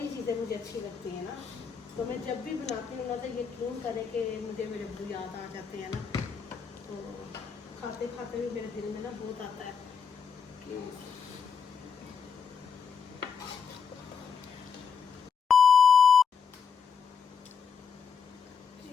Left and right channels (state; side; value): quieter; right; 6.4 dB